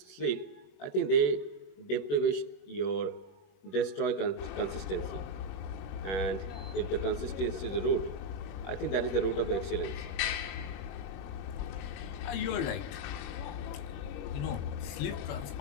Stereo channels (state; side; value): late; right; 21 ms